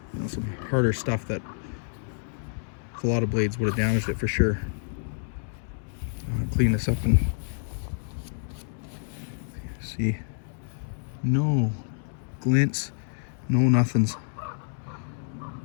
know, some harder stuff that a lot of blades would have damaged it for sure. Clean this up and see, no glints, no nothings.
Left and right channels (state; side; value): silent; right; 59 dB below the other